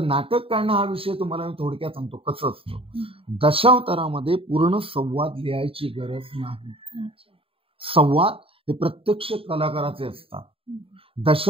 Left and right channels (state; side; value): late; left; 0.27 ms